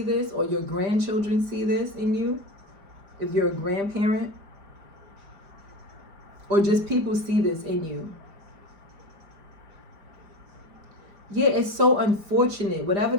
this, or your grandchildren see this in you, if you're a grandparent. or just people see this in you. Yeah, it's so unfortunate. Whatever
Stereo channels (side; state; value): left; late; 5.0 ms